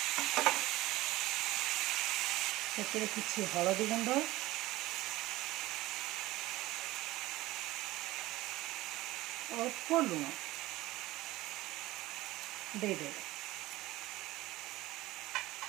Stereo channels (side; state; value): left; quieter; 17.9 dB